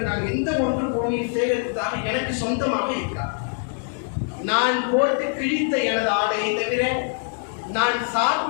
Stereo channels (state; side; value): silent; right; 56 dB below the other